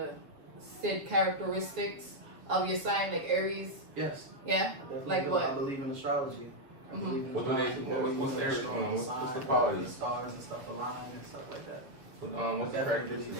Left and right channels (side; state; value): left; late; 7.2 ms